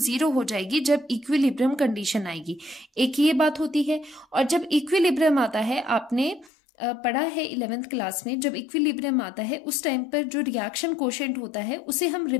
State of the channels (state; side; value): drops out; right; at 6.5 s